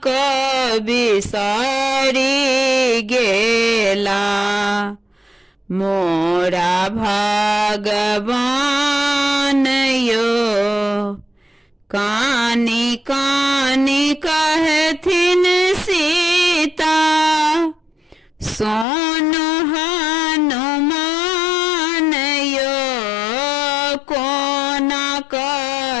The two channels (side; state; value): right; drops out; at 18.9 s